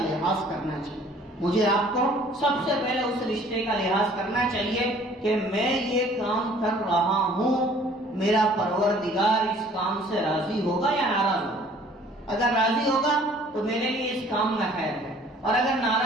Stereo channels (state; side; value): normal; both; correlation 0.54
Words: لحاظ کرنا چاہیے. مجھے آپ کو سب سے پہلے اس رشتے کا لحاظ کرنا چاہیے کہ میں یہ کام کر رہا ہوں، میرا پروردگار اس کام سے راضی ہوگا یا ناراض ہوگا. اگر راضی ہوگا تو میرے لیے اس کام میں خیر ہے، اور اگر